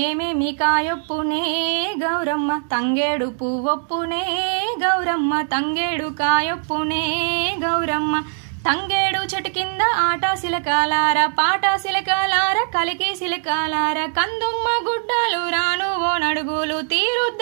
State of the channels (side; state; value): left; silent; digital silence